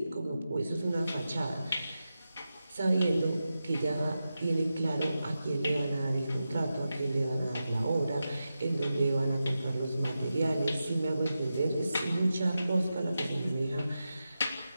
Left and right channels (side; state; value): both; inverted; correlation -0.91